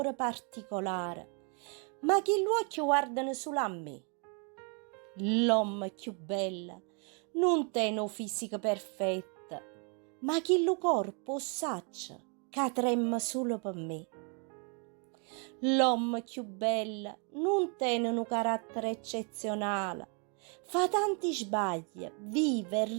particolare, ma che gli occhi guardano solo a me. L'uomo più bello non tiene un fisico perfetto, ma che il corpo saccia che trema solo per me. L'uomo più bello non tiene un carattere eccezionale, fa tanti sbagli, vive e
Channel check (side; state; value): left; quieter; 37.3 dB